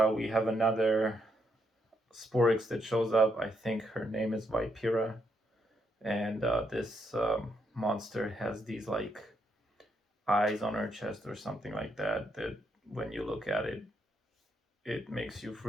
we have another Sporix that shows up. I think her name is Vipira, and this monster has these like eyes on her chest or something like that, that when you look at it, it makes you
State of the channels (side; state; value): both; normal; correlation 0.76